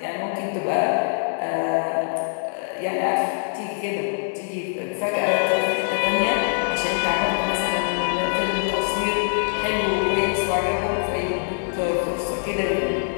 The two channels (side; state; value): right; silent; digital silence